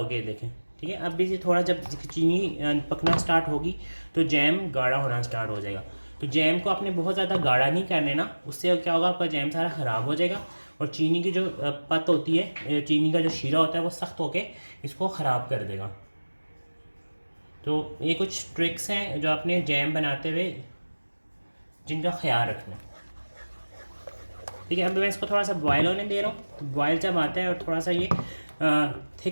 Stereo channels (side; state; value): both; inverted; correlation -1.00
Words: गया, देखें, ठीक है। अब भी थोड़ा जब चीनी पकना स्टार्ट होगी तो जैम गाढ़ा होना स्टार्ट हो जाएगा। तो जैम को आपने बहुत ज़्यादा गाढ़ा नहीं कर लेना, उससे क्या होगा, आपका जैम सारा ख़राब हो जाएगा और चीनी की जो पत होती है, चीनी का जो शीरा होता है वो सख्त होके इसको ख़राब कर देगा। तो ये कुछ ट्रिक्स हैं जो आपने जैम बनाते हुए जिनका ख्याल रखना, ठीक है। अब मैं इसको थोड़ा सा बॉयल होने दे रहा हूँ। तो बॉयल जब आता है और थोड़ा सा ये